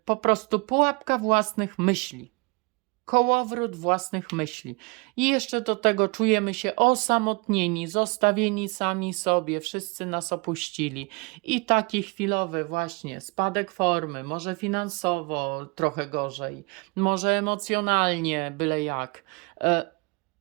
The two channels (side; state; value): left; quieter; 29.3 dB